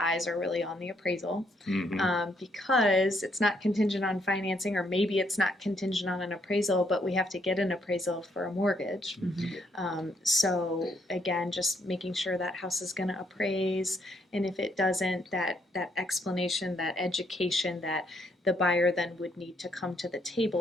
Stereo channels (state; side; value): normal; both; correlation 0.73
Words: eyes are really on the appraisal because it's not contingent on financing, or maybe it's not contingent on an appraisal, but we have to get an appraisal for a mortgage. So again, just making sure that house is going to appraise, and if it doesn't, that explanation, that education, that the buyer then would need to come to the